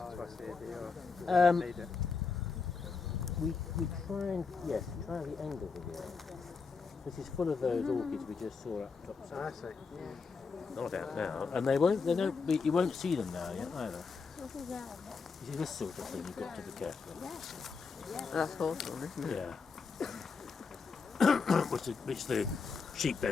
twice a year? Um, Need it? We try and try the angle of it. This is full of those orchids we just saw up top. I see. Not out now, and you won't see them now yet either. You see this sort of thing, you've got to be careful. That's hawthorn, isn't it? Yeah. which the sheep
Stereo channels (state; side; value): quieter; right; 5.0 dB